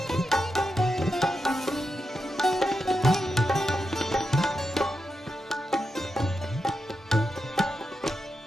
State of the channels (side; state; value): both; normal; correlation 0.87